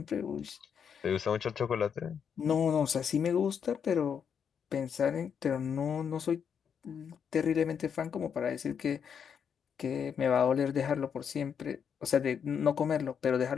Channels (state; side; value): quieter; right; 7.4 dB